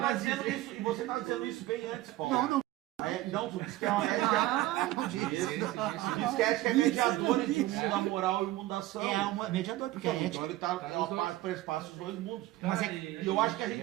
dizendo isso, e você estava dizendo isso bem antes, Paulo. Não, Não, tu disse que é uma ética. não disse. Tu disse que a ética é mediadora entre o mundo da moral e o mundo da ação. É uma mediador, porque a Então ética... ele perspassa os dois mundos. Mas é- E eu acho que a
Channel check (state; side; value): quieter; left; 16.4 dB